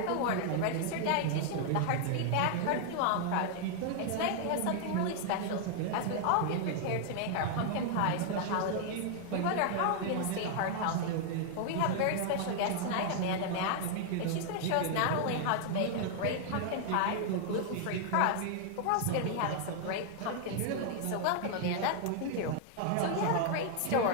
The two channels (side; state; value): both; different; correlation 0.00